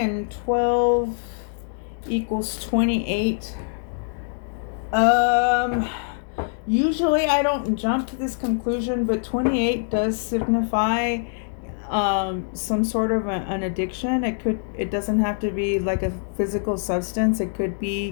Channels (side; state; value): right; silent; digital silence